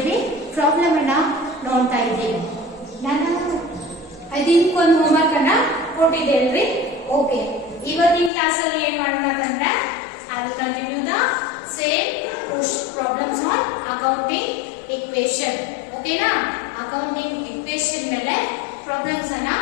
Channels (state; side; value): drops out; right; at 8.3 s